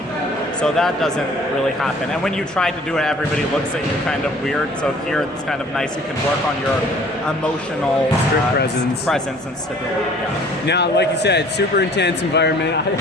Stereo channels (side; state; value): both; normal; correlation 0.52